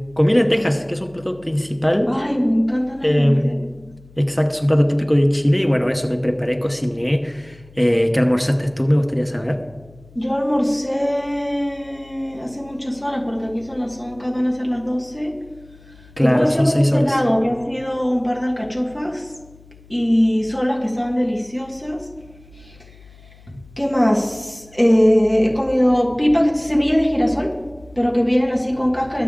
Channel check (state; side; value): noise; left; hum, 25 dB below the sound